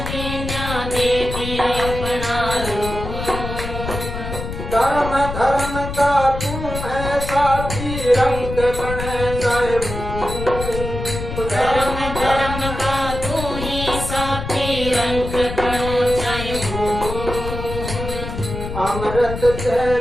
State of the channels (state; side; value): noise; left; rumble, 6 dB below the sound